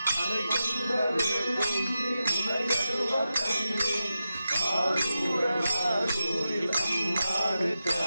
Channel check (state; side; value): inverted; both; correlation -0.90